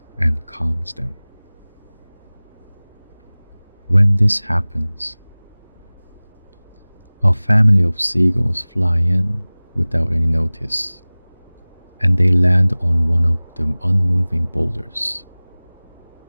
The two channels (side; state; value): both; inverted; correlation -1.00